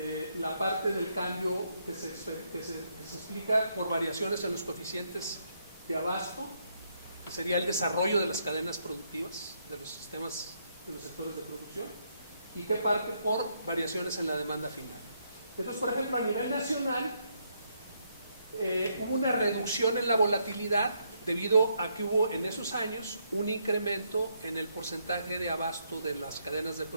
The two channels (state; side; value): inverted; both; correlation -0.75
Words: La parte del cambio que se explica por variaciones en los coeficientes de abasto, que sería el desarrollo de las cadenas productivas, de los sistemas, de los sectores de producción, y que parte por variaciones en la demanda final. Entonces, por ejemplo, a nivel nacional, hubo una reducción en la volatilidad debido a que hubo en esos años un incremento en el porcentaje de abasto de las cadenas de